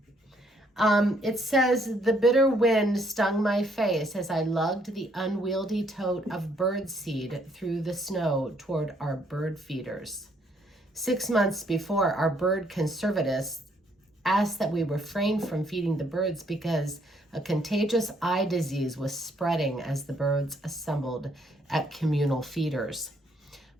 It says, "The bitter wind stung my face as I lugged the unwieldy tote of birdseed through the snow toward our bird feeders. 6 months before, our bird conservatists asked that we refrain from feeding the birds because a contagious eye disease was spreading as the birds assembled at communal feeders.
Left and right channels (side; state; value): both; normal; correlation 0.68